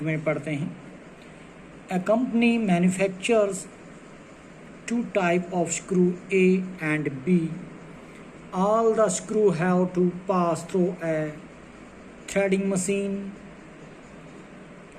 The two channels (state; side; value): identical; both; correlation 1.00